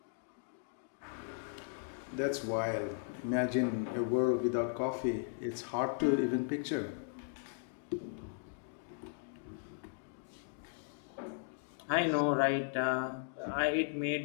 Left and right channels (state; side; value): silent; right; digital silence